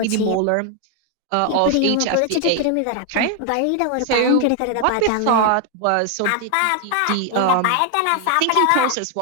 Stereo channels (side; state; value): both; different; correlation 0.00